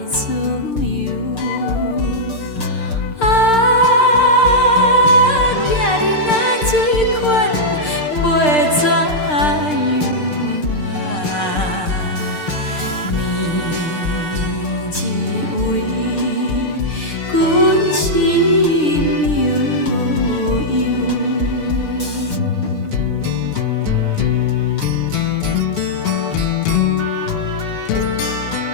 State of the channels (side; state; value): right; late; 6.6 ms